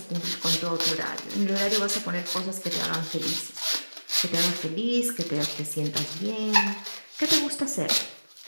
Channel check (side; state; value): both; inverted; correlation -1.00